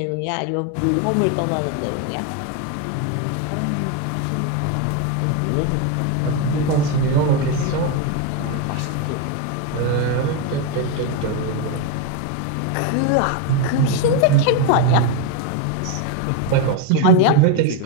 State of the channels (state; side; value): different; both; correlation 0.02